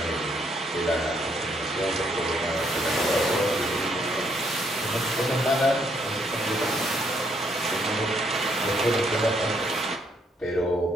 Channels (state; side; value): normal; both; correlation 0.71